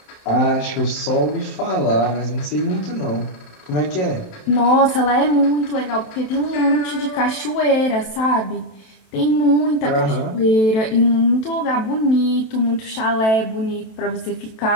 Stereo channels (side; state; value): right; late; 27 ms